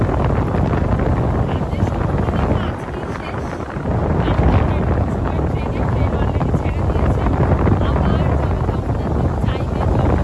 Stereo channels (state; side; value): identical; both; correlation 1.00